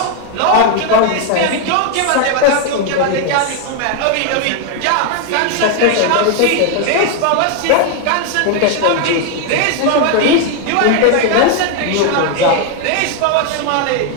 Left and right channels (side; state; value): both; different; correlation 0.01